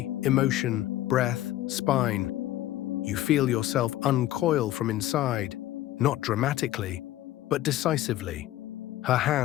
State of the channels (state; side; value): quieter; right; 14.3 dB